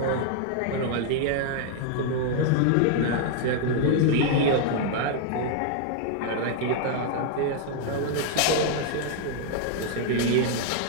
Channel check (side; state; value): both; different; correlation -0.01